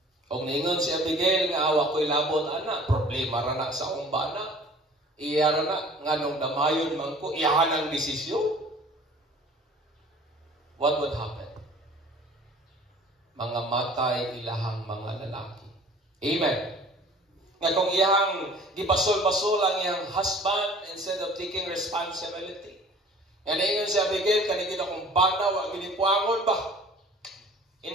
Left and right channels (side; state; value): both; normal; correlation 0.48